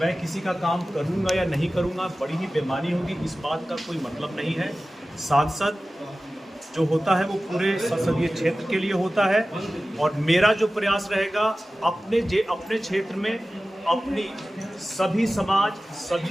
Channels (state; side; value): normal; both; correlation 0.96